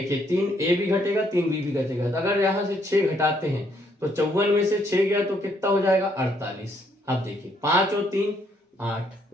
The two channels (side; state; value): both; normal; correlation 0.70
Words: 3 ए भी घटेगा 3 बी भी घटेगा, तो अगर यहाँ से 6 घटाते हैं तो 54 में से 6 गया तो कितना हो जाएगा, 48। अब देखिए 5 और 3 8,